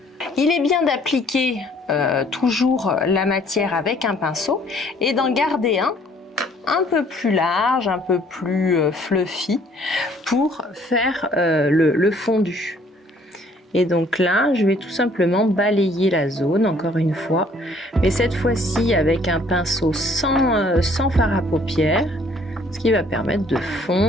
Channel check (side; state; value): both; normal; correlation 0.60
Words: Il est bien d'appliquer toujours la matière avec un pinceau et d'en garder un peu plus large, un peu plus fluffy pour faire le fondu. Et donc là, je vais tout simplement balayer la zone, encore une fois, mais cette fois-ci avec un pinceau sans fard à paupières, ce qui va permettre de